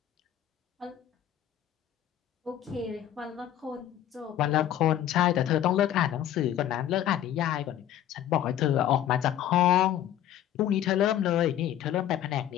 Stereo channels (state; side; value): quieter; right; 11.4 dB